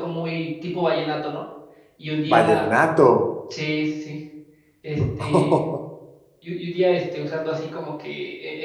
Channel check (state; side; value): identical; both; correlation 1.00